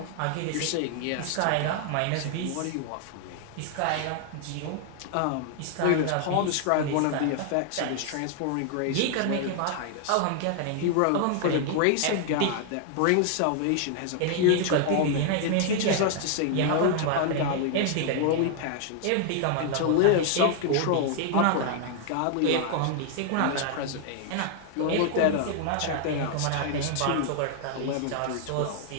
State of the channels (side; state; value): both; different; correlation 0.00